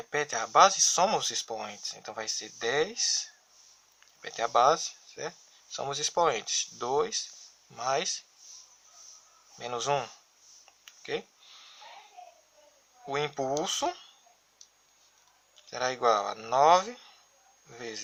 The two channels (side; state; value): both; identical; correlation 1.00